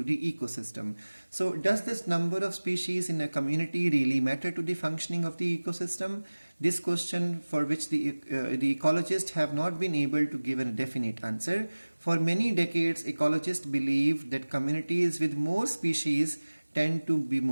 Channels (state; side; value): inverted; both; correlation -1.00